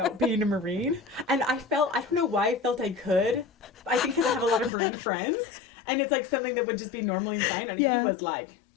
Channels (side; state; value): right; drops out; at 4.7 s